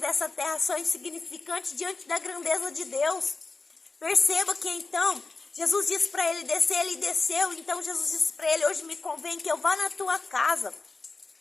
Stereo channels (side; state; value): right; quieter; 3.9 dB